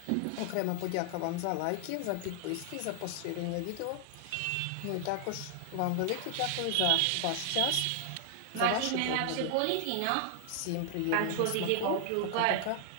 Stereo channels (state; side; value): different; both; correlation 0.00